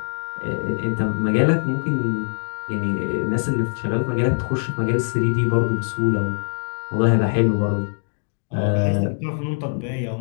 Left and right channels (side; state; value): right; silent; 64 dB below the other